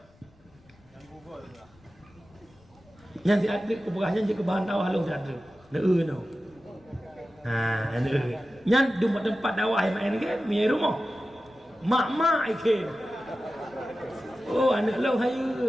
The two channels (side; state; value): left; noise; rumble, 29 dB below the sound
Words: yang diadrik keberahnya jika bahan dakwah lu diadrik no. Nah, nyan di tempat dakwah yang main game, mi rumah. Mak ikem. Oh, anak lau